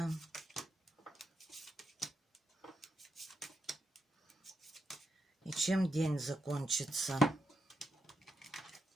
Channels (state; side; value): normal; both; correlation 0.84